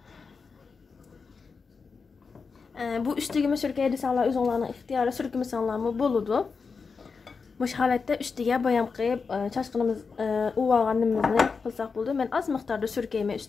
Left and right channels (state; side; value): quieter; right; 5.0 dB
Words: Bu üstüge sürkeydi sanlar özünlərinin ixtiyarı sürkümü sanlarımı buludu. Muş halətdə üstüge bayam qıyıb çaşqınımız uvağanımızı qılsaq buldu. Mən az miqdarda sürkeyimə